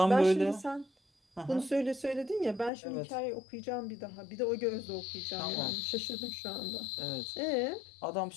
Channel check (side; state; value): right; drops out; at 2.7 s